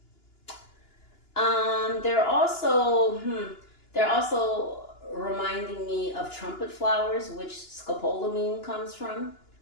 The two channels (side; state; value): right; late; 2.9 ms